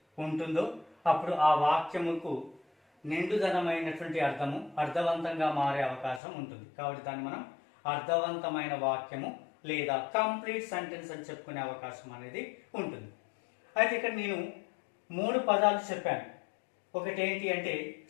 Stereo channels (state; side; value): drops out; right; at 6.2 s